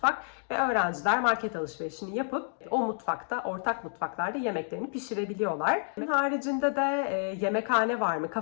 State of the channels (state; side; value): silent; right; digital silence